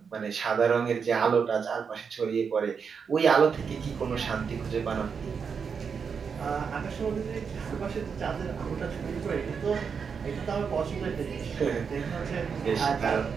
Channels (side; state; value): left; quieter; 6.2 dB